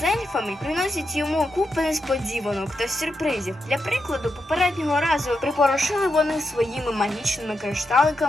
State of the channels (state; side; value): normal; both; correlation 0.85